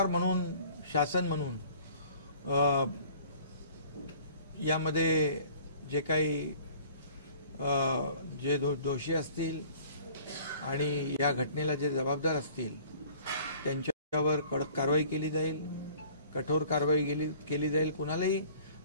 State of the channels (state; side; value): inverted; both; correlation -0.51